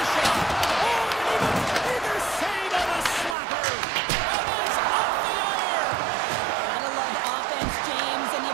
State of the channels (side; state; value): left; drops out; at 3.4 s